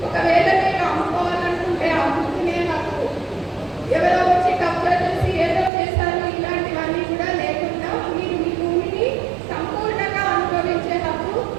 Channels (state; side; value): drops out; left; at 5.7 s